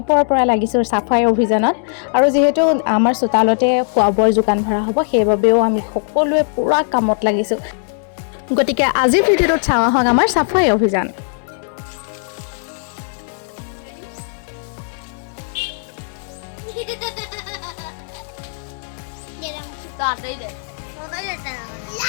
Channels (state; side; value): silent; right; digital silence